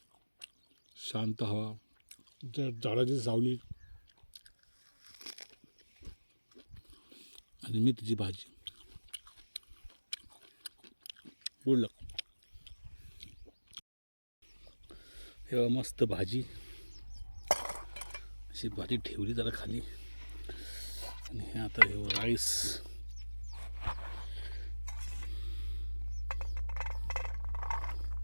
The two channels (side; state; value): both; inverted; correlation -1.00